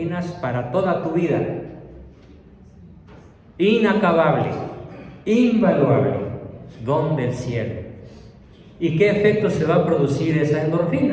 para toda tu vida. Inacabable, invaluable, don del cielo. ¿Y qué efecto se va a producir esa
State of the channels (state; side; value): identical; both; correlation 1.00